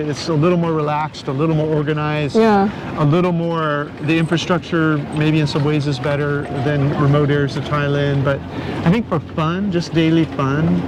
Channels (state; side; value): identical; both; correlation 1.00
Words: It's a little more relaxed, a little more organized, a little more, the infrastructure maybe in some ways is better than remote areas of Thailand, but I think for fun, just daily fun,